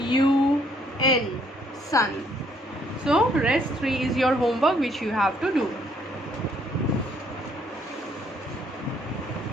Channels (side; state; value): both; normal; correlation 0.67